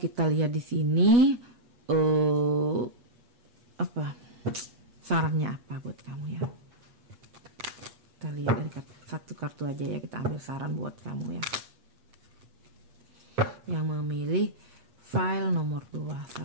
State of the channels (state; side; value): late; left; 8.4 ms